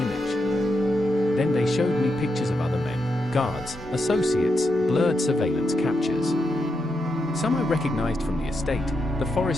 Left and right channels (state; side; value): normal; both; correlation 0.83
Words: image. Then they showed me pictures of other men, guards, associates, blurred surveillance captures. Some I recognized from the estate, the